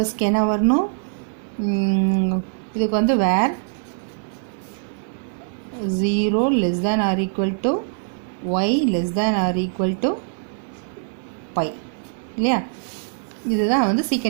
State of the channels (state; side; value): silent; left; digital silence